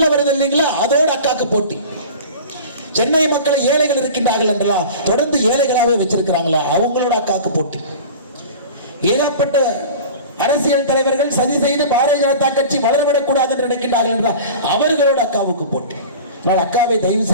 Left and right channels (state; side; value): inverted; both; correlation -0.37